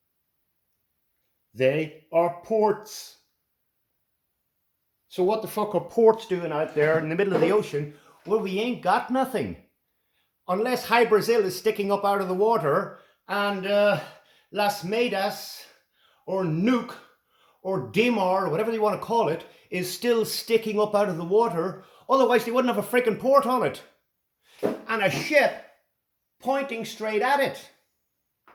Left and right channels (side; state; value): both; identical; correlation 1.00